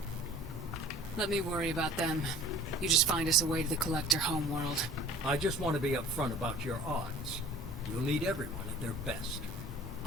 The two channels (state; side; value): normal; both; correlation 0.47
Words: Let me worry about them. You just find us a way to the Collector homeworld. I just want to be upfront about your odds. You'll need everyone at their best.